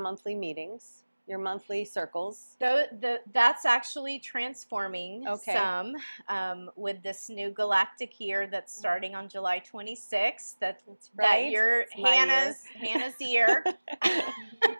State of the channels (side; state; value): both; inverted; correlation -1.00